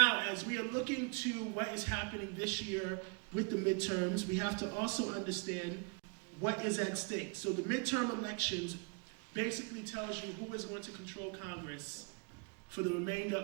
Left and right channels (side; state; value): left; quieter; 35.2 dB